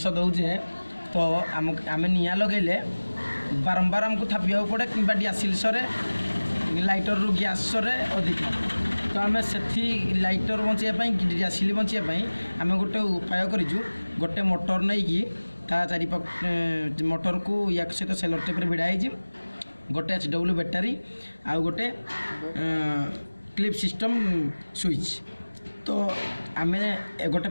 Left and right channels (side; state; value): both; inverted; correlation -1.00